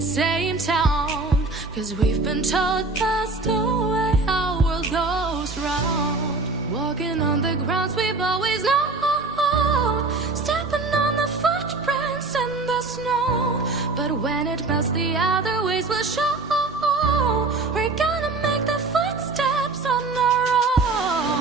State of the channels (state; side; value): quieter; left; 3.6 dB